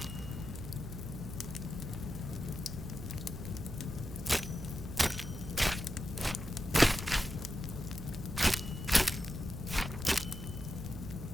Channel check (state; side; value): noise; right; hum, 10 dB below the sound